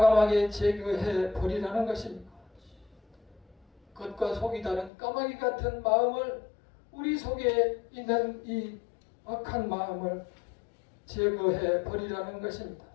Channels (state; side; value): drops out; right; at 4.9 s